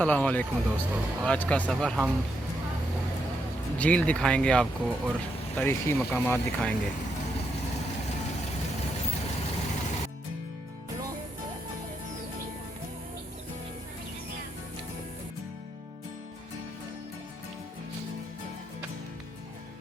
वालेकुम दोस्तों। आज का सफ़र हम झील दिखाएंगे आपको और तारीख़ी मकामात दिखाएंगे।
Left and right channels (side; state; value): both; normal; correlation 0.80